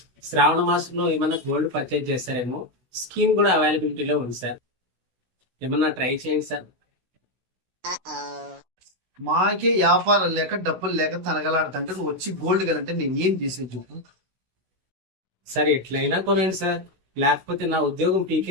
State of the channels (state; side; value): late; left; 16 ms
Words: శ్రావణ మాసంలో ఏమన్నా గోల్డ్ పర్చేజ్ చేస్తారేమో, స్కీమ్ కూడా అవైలబిలిటీలో ఉంది సార్. ఏమన్నా ట్రై చేయండి సార్. మాకే వ్యాపారం లేక డబ్బులు లేక తనగలాడుతుంటే నువ్వు వచ్చి గోల్డ్ కనంటే నేను ఏం చేసేది చెప్పు. సార్, ఎట్లయినా కొనండి సార్, లేకపోతే నా ఉద్యోగం